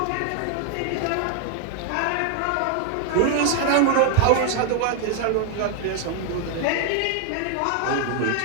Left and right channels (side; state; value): both; different; correlation 0.00